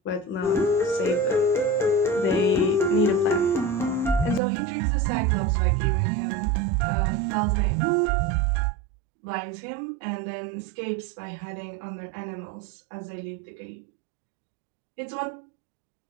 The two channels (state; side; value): drops out; left; at 4.4 s